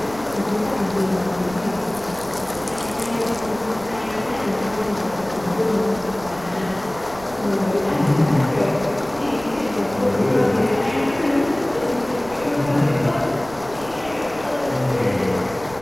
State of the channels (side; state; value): right; noise; rumble, 18 dB below the sound